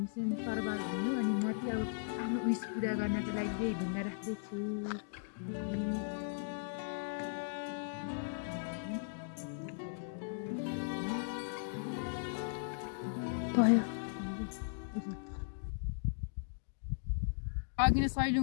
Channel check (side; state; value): right; silent; digital silence